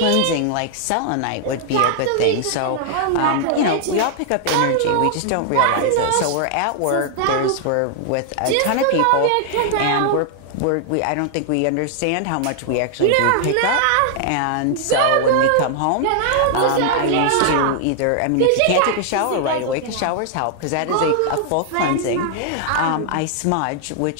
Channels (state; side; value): different; both; correlation 0.00